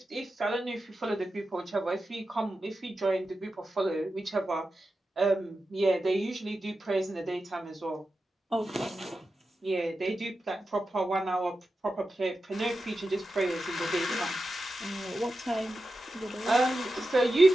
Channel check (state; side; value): normal; both; correlation 0.91